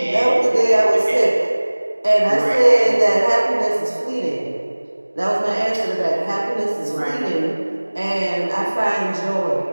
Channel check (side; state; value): both; inverted; correlation -1.00